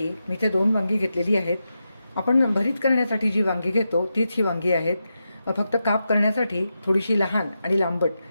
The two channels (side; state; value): both; inverted; correlation -0.88